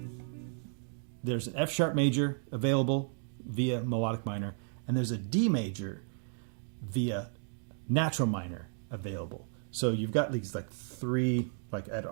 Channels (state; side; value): silent; left; digital silence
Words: there's an F sharp major available via melodic minor, and there's a D major via natural minor available. So you've got these like 3 like at